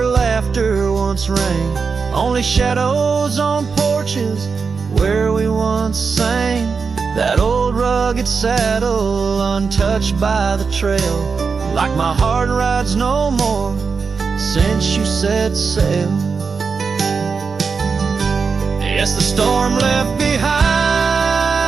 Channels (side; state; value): left; quieter; 5.2 dB